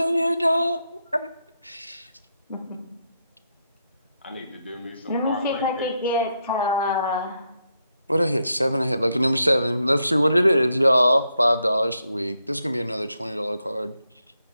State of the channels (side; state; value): both; inverted; correlation -0.81